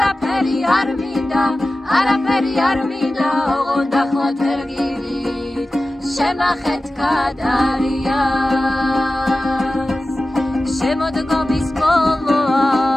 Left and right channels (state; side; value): normal; both; correlation 0.95